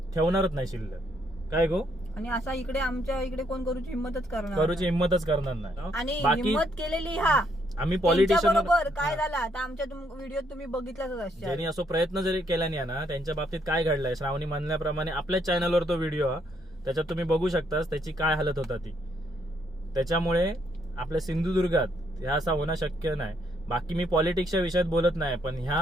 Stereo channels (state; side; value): normal; both; correlation 0.72